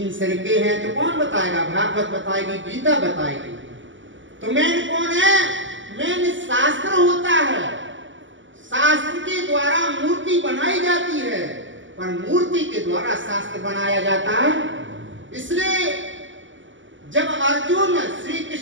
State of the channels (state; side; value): late; left; 0.55 ms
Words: सिर के हैं, तो कौन बताएगा? भागवत बताएगी, गीता बताएगी। तो मेन कौन है? मेन शास्त्र होता है। शास्त्र के द्वारा मूर्ति बनाई जाती है, पर मूर्ति के द्वारा शास्त्र बनाया जाता है। इसलिए जब अर्जुन श्री